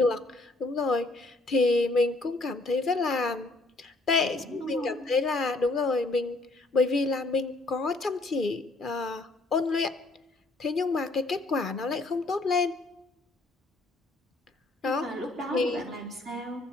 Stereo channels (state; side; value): quieter; right; 3.1 dB